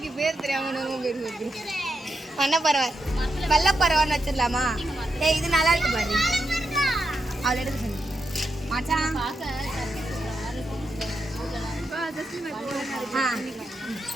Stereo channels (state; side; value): normal; both; correlation 0.84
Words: பேர் தெரியாம பேர் வருது. மண்ண பரவாய் வெள்ள பரவான்னு வச்சிடலாமா? ஏய் இது நல்லா இருக்கு பாரு. அவளை எடுக்க சொல்லு மச்சான்.